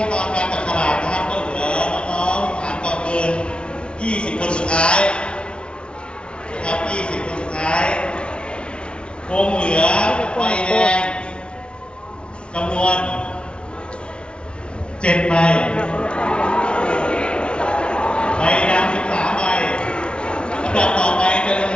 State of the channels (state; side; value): late; right; 0.057 ms